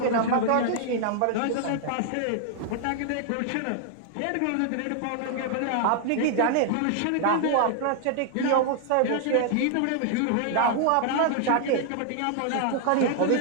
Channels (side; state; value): both; different; correlation 0.00